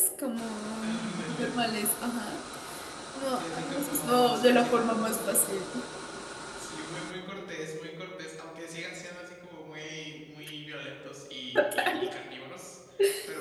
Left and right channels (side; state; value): both; identical; correlation 1.00